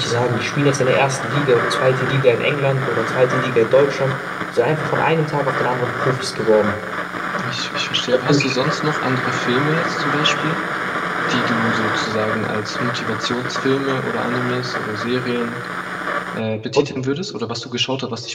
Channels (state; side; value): identical; both; correlation 1.00